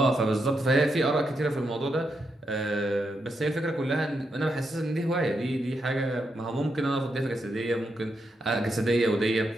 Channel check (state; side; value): normal; both; correlation 0.83